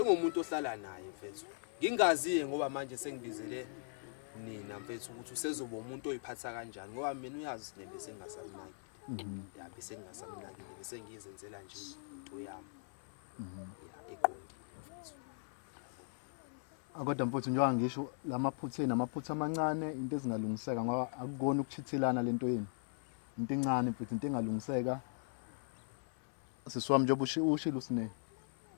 ohlala naye mfethu ngingaziye ngoba manje sengibizele nina mfethu ukuthi usezoba umuntu oyiphatha kanjani ngoba mina uyazi usine bese ngingasamnakile ya bese ngingasamnakile bese ngiyizenzela nje into yami ya eqondile mfethu yabo kodwa mfuthu njengoba ngisho lamaphutha namaphutha amancane into ezingalungiseka ngoba akukona ukuchithelana lento yini into encane mfethu into engalungiseka sesiwami njengoba ushilo usine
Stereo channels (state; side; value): silent; right; 51 dB below the other